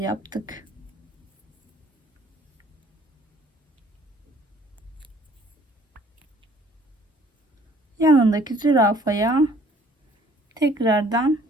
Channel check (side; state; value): both; normal; correlation 0.57